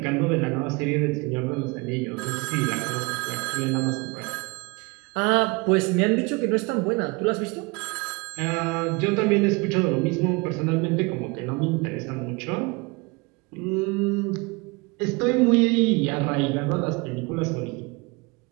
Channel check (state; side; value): quieter; left; 26.8 dB